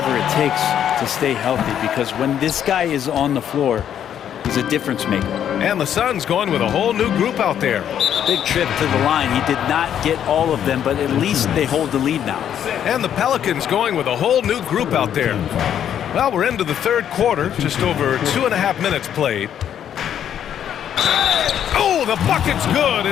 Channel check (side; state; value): right; quieter; 9.6 dB